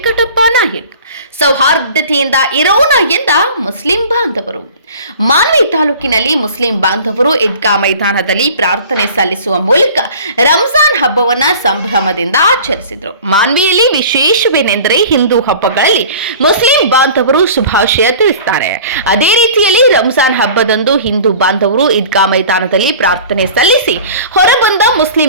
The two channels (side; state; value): both; inverted; correlation -0.43